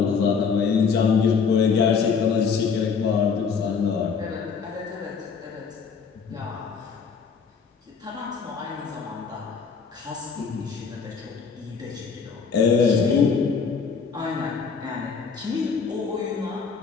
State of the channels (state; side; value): quieter; right; 5.7 dB